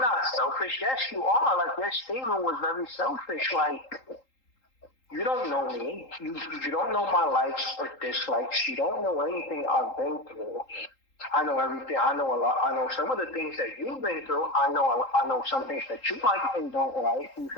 selfish." Yes, you are. Like your statement was very selfish. Like you don't know me. You don't know my likes or dislikes. You don't know anything I've been through. I know everything. I know a lot. I know some of the things that you've been through. I know some things that you like and don't like. You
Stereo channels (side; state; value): right; late; 3.8 ms